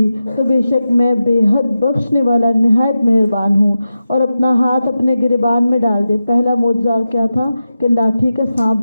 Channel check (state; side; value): inverted; both; correlation -0.91